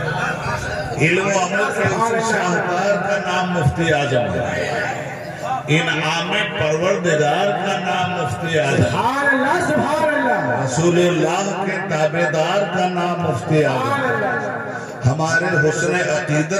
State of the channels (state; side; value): identical; both; correlation 1.00